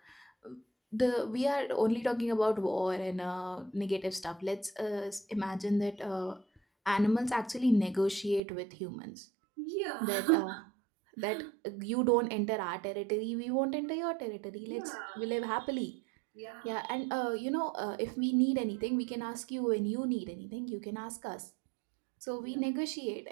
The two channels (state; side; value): drops out; left; at 8.4 s